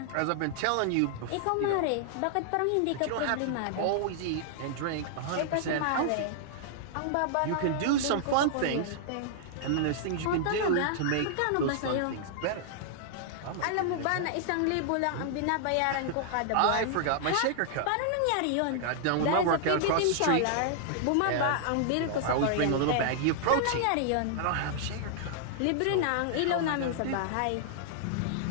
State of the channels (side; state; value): both; different; correlation -0.01